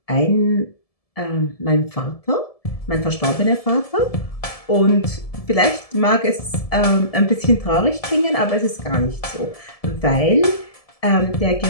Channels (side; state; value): right; late; 1.7 ms